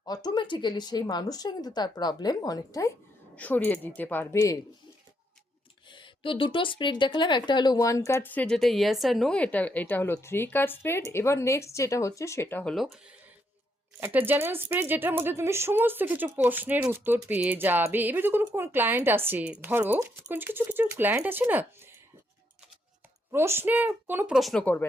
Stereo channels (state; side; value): normal; both; correlation 0.76